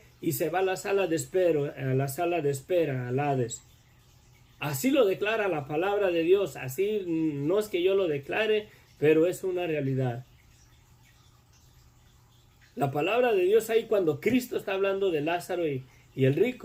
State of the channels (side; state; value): both; identical; correlation 1.00